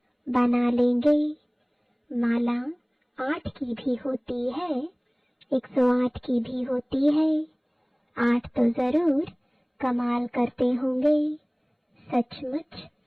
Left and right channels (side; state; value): both; identical; correlation 1.00